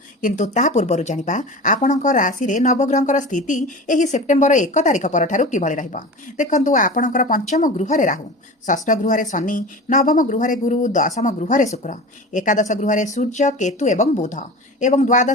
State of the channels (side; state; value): both; normal; correlation 0.33